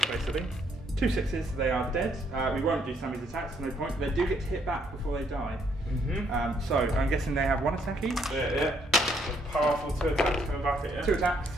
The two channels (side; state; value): both; normal; correlation 0.70